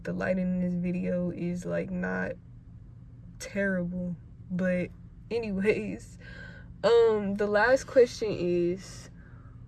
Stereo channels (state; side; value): identical; both; correlation 1.00